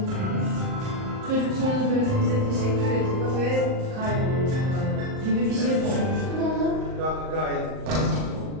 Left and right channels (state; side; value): late; left; 38 ms